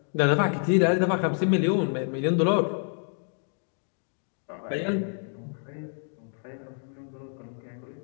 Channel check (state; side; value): silent; right; 59 dB below the other